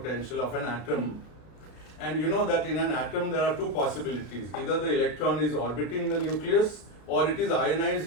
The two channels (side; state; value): right; late; 33 ms